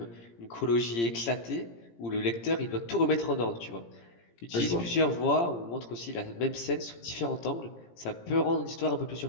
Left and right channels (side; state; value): right; late; 17 ms